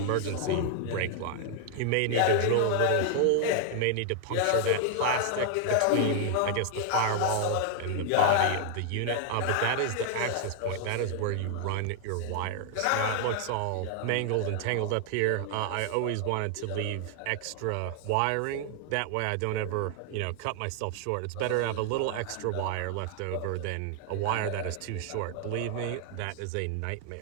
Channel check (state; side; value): different; both; correlation 0.00